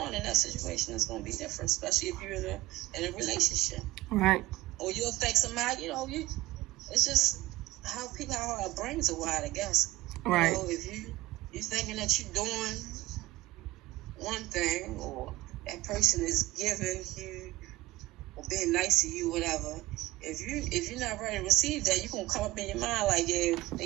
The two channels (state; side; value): quieter; left; 18.3 dB